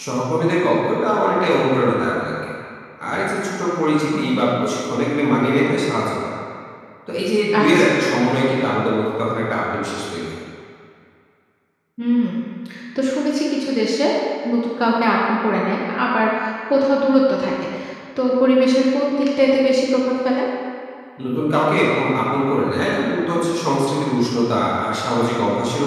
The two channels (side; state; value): both; identical; correlation 1.00